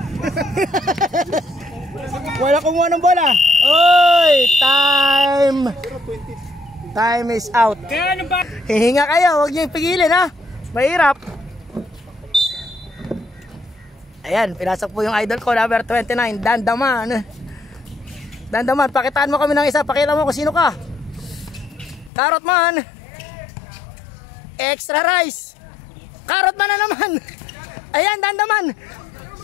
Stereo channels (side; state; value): right; drops out; at 22.1 s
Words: Wala kumuha ng bola. Uy! Time is out. Kaya ano ba? Hihinga kayo, huwag niyo ipigilin ha. Mahirap. Ayan, pinasok po yung idol ko, number 29, Dandaman. Pakitaan mo kami ng isa. Pakita mo kung sino ka. Carrot man. Extra rice. Carrot man na naman. Ayan, Dandaman.